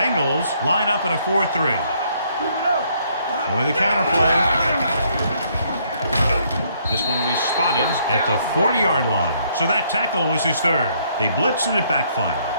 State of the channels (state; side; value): inverted; both; correlation -0.68